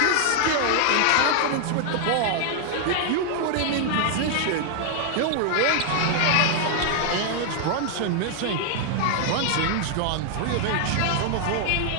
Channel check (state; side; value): different; both; correlation 0.00